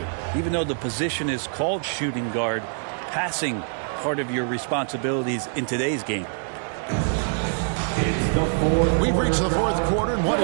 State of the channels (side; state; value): left; silent; 61 dB below the other